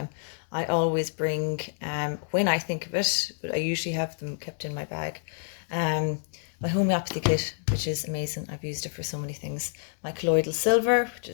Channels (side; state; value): right; silent; 59 dB below the other